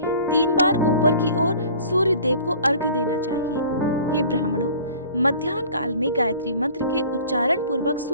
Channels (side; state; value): both; inverted; correlation -0.47